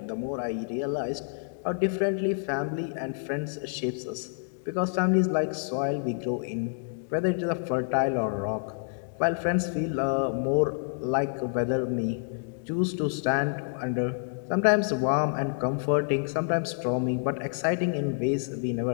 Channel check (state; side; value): silent; right; digital silence